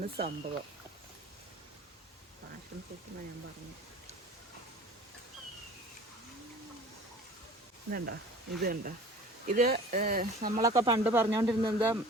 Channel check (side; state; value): both; normal; correlation 0.43